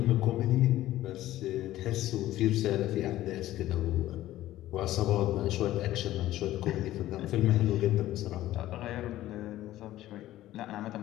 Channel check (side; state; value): right; quieter; 14.7 dB